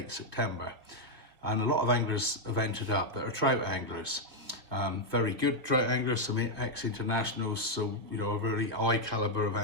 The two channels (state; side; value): late; left; 2.0 ms